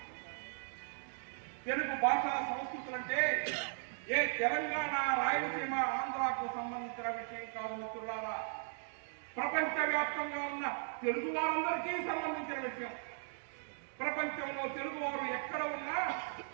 తెలుగు భాషా సంస్కృతులంటే ఏ తెలంగాణ, రాయలసీమ, ఆంధ్రాకు సంబంధించిన విషయం కాదు మిత్రులారా. ప్రపంచవ్యాప్తంగా ఉన్న తెలుగు వారందరికీ సంబంధించిన విషయం. ప్రపంచంలో తెలుగు వారు ఎక్కడ ఉన్నా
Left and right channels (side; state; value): left; silent; digital silence